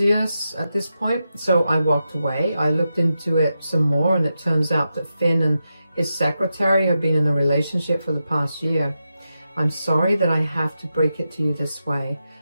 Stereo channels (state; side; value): inverted; both; correlation -0.88